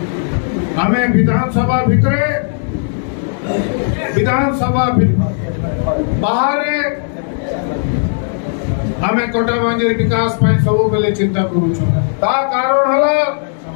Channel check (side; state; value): right; silent; digital silence